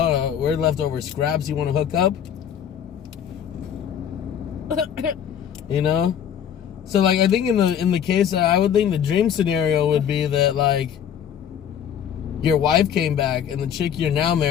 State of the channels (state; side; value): quieter; right; 8.8 dB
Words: we're leftover scraps. You want to hook up? You know? So, like, I think in the case, I would think the dream scenario would be that, like, your wife came back and the chick you're now